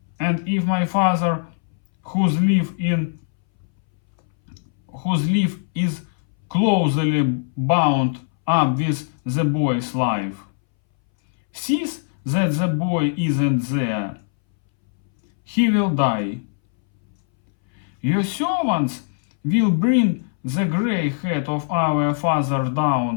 and if my father whose life is closely bound up with the boy's life, sees that the boy isn't there, he will die. Your servants will bring the gray head of our father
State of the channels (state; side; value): silent; right; 63 dB below the other